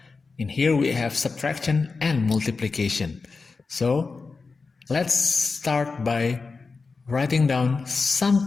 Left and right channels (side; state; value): right; quieter; 4.3 dB